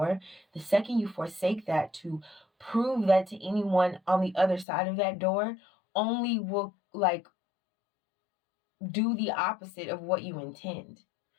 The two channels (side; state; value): right; drops out; at 4.7 s